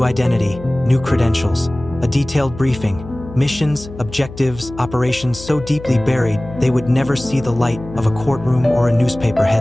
identity, new credentials, a detailed briefing, missions, objectives, operations so deeply buried they would never see the light of a courtroom or a newspaper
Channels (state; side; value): noise; left; hum, 14 dB below the sound